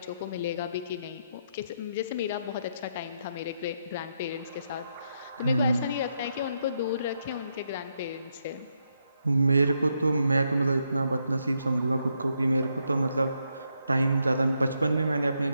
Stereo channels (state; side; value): inverted; both; correlation -0.79